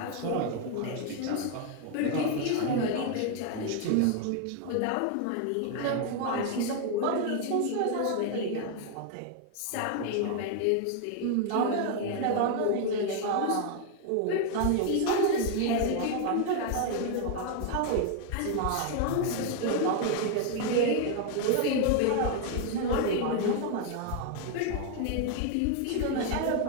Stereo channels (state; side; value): different; both; correlation 0.01